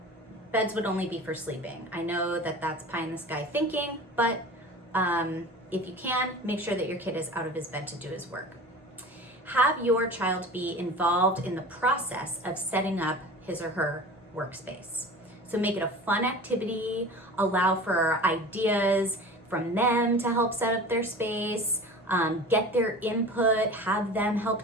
beds would only be for sleeping. I know that that's pie in the sky thinking, but if you can, make sure that your kid is out of his bed to do his work. Have your child be involved in the process of setting up his or her workspace. So make it a fun activity, allow for ideas from them to help set up their space, get their input, have them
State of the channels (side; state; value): both; normal; correlation 0.37